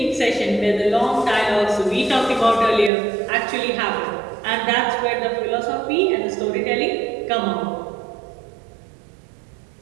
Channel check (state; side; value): drops out; left; at 2.9 s